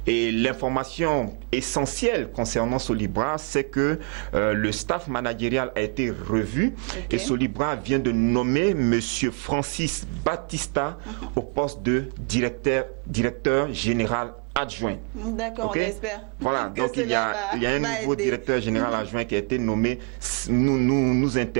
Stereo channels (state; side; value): quieter; left; 37.4 dB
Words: Et l'information essentielle concernant Solibra, c'est que le staff managérial a été revu. Et Solibra vient de nommer M. Francis Batista au poste de directeur général adjoint. D'accord, on espère que cela va aider. Il y a un nouveau directeur général adjoint qui a été nommé. Nous